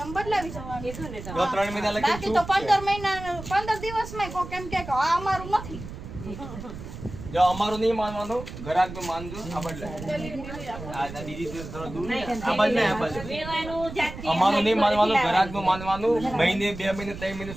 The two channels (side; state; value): right; noise; rumble, 11 dB below the sound